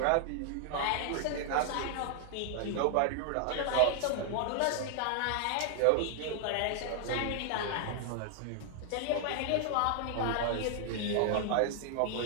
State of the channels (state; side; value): different; both; correlation 0.00